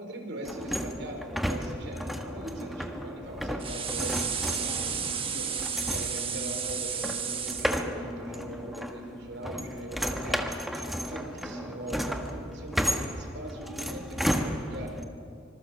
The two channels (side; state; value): both; normal; correlation 0.59